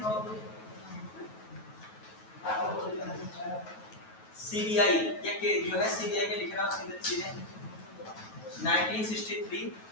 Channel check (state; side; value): late; right; 9.3 ms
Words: सीबीआई, ये जो है सीबीआई में लिख रहा हूं सीधे 1963,